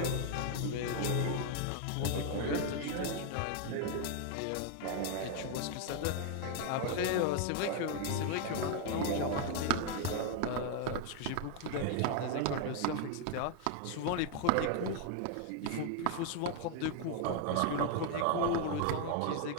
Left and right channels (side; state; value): both; different; correlation 0.01